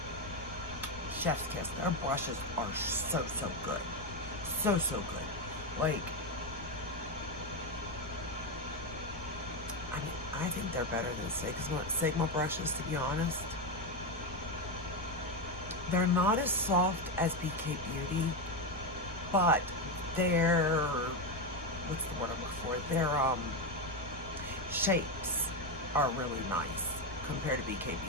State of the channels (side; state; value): both; normal; correlation 0.09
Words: chef's kiss. Their brushes are so good. So good. Like, I mean, I think they're better than Sigma brushes, to be honest. They're not as soft as BK Beauty, but they're, what's the word I'm looking for? They're, shapes are really nice compared to BK